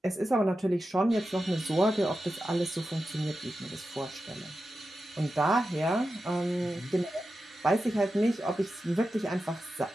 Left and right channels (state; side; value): normal; both; correlation 0.91